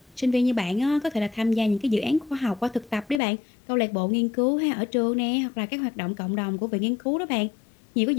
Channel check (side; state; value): right; drops out; at 3.2 s